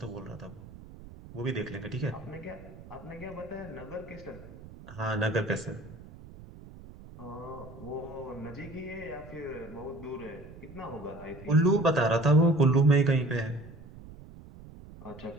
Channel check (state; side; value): noise; right; rumble, 17 dB below the sound